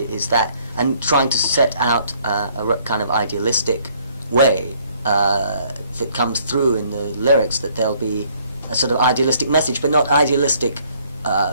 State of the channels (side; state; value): both; inverted; correlation -0.63